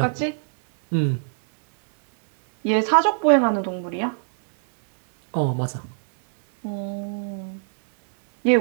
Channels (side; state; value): left; silent; digital silence